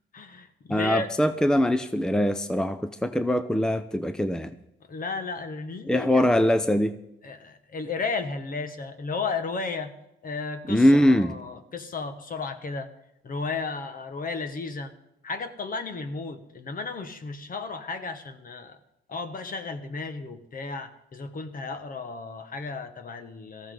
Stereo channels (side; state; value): both; normal; correlation 0.79